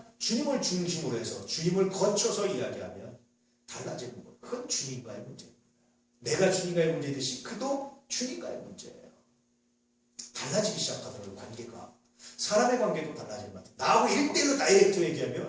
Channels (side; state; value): both; identical; correlation 1.00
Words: 주님을 중심으로 해서 주님을 거쳐서 이야기하면 달라지는 거예요. 그건 주님과의 문제입니다. 내가 주님과의 문제듯이 그도 주님과의 문제예요. 달라지기 시작하더라고요. 관계가. 사람의 관계도 달라질 것 같아요. 나하고 1대1로 다이렉트